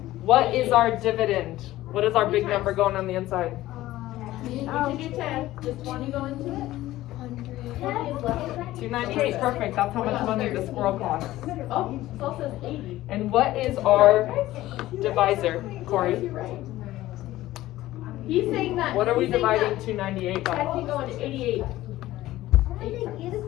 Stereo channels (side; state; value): right; quieter; 15.8 dB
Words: What is our dividend? What is our big number going on the inside? You can do 10. Does 20 go into it? 20 is less. $298. Perfect. That's how much money the squirrel costs. Oh, it also says 80. And what is our divisor, Corey? He's saying that. What are we he's saying dividing that 298 by? 10 can go into 88.